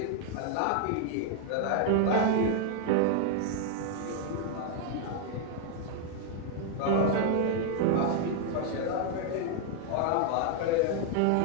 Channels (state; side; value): different; both; correlation 0.00